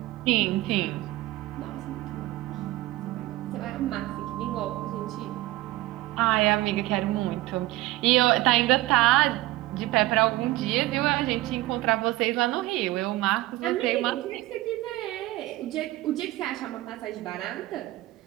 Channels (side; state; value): left; quieter; 17.9 dB